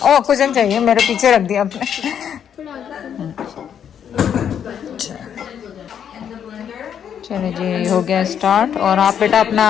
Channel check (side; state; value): right; quieter; 8.6 dB